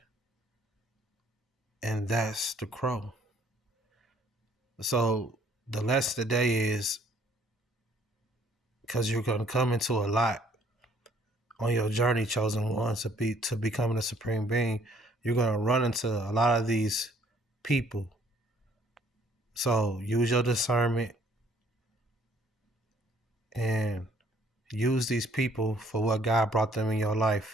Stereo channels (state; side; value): normal; both; correlation 0.61